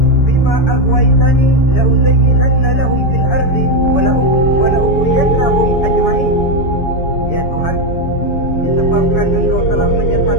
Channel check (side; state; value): right; late; 7.0 ms